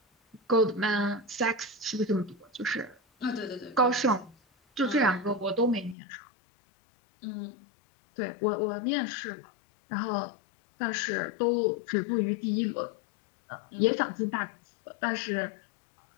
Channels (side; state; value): right; drops out; at 6.0 s